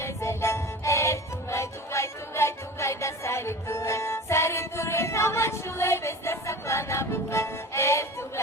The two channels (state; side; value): normal; both; correlation 0.36